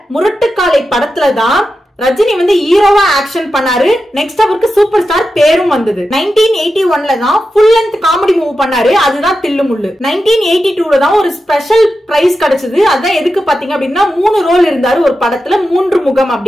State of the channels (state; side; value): normal; both; correlation 0.90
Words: Murattu Kaalai படத்துல தான் ரஜினி வந்து ஹீரோவா ஆக்ஷன் பண்ணாரு. நெக்ஸ்ட் அவருக்கு சூப்பர் ஸ்டார் பேரும் வந்தது. 1981ல தான் ஃபுல் லென்த் காமெடி மூவ் பண்ணாரு, அதுதான் தில்லுமுள்ளு. 1982ல தான் ஒரு ஸ்பெஷல் பிரைஸ் கிடைச்சது. அதான் எதுக்கு பாத்தீங்க அப்படின்னா 3 ரோல் இருந்தாரு ஒரு படத்துல, 3 முகம்